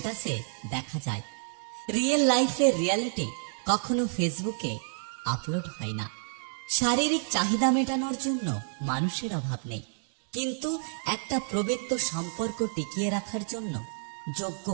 দেখা যায়। রিয়েল লাইফের রিয়ালিটি কখনো ফেসবুকে আপলোড হয় না। শারীরিক চাহিদা মেটানোর জন্য মানুষের অভাব নেই, কিন্তু একটা পবিত্র সম্পর্ক টিকিয়ে রাখার জন্য যোগ্য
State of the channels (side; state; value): left; silent; digital silence